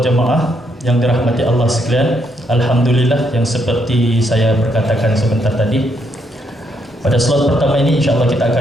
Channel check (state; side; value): normal; both; correlation 0.75